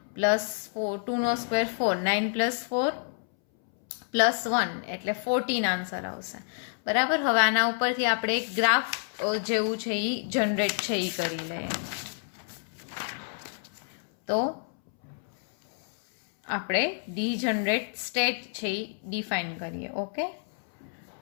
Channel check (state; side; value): silent; right; 59 dB below the other